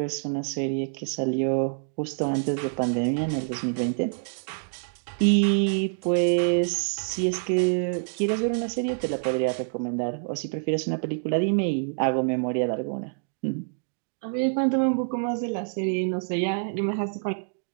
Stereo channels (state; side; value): silent; left; digital silence